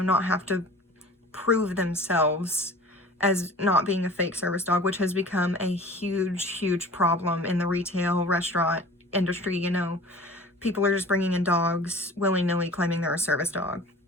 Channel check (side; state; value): both; normal; correlation 0.43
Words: not have to prove themselves as not being a fake service dog, which has become a huge problem in the retail restaurant industry. People are just bringing in dogs willy-nilly claiming they're a service dog.